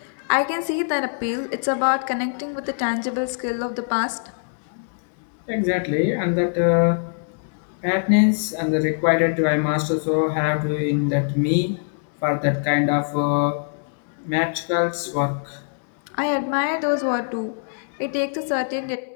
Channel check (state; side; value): silent; right; 62 dB below the other